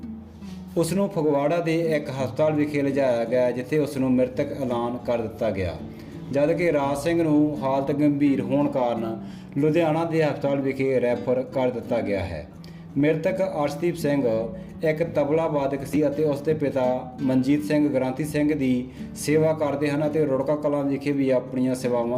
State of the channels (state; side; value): identical; both; correlation 1.00